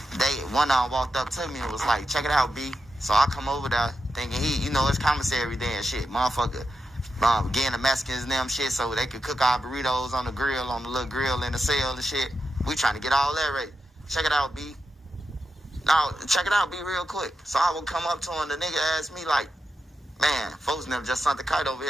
one of them walked up to me and was like, "Check it out, B." So I come over there thinking it's commissary day and shit. Motherfucker, getting the Mexicans and them shit so they could cook our burritos on the grill, on the little grill in the cell and shit. We trying to get all that ready. Check it out, B. Now, check it out, B, real quick. So I would come up to him, the nigga asked me like, man, folks never just sent the kite over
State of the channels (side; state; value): both; normal; correlation 0.88